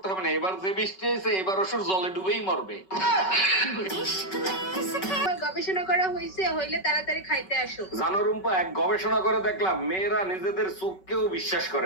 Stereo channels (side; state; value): right; late; 5.3 ms